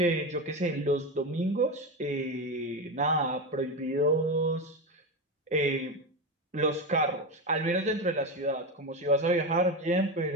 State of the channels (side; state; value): both; normal; correlation 0.17